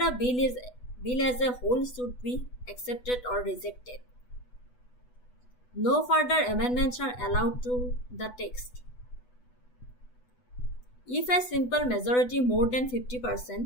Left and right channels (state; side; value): late; right; 8.1 ms